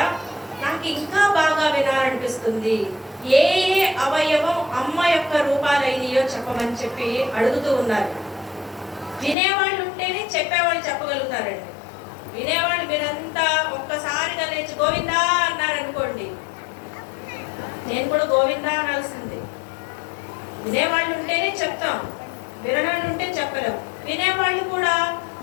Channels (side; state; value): right; drops out; at 9.3 s